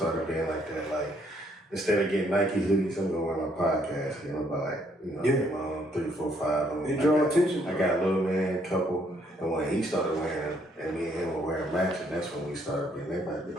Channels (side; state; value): both; normal; correlation 0.68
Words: being like that. Like, instead of getting Nike hoodies, I'm gonna wear my podcast. You know, buy get my own 3, 4, 5. It draw attention. I got a little man, couple, and when he started wearing them, and me and him were wearing matching, that's when we started being. They might be